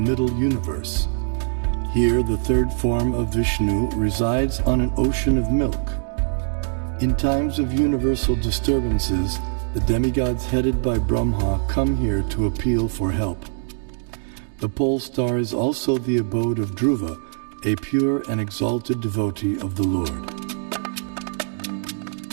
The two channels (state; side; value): silent; left; digital silence